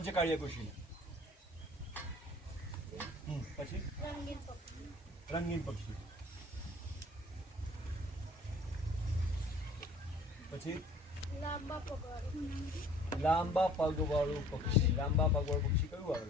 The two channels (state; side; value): normal; both; correlation 0.52